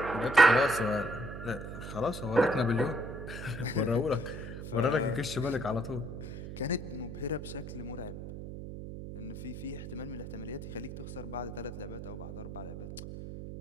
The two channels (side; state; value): right; noise; hum, 9 dB below the sound